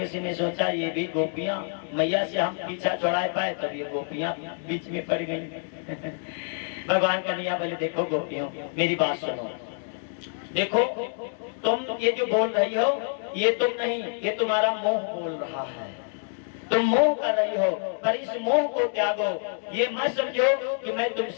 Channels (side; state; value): right; silent; 60 dB below the other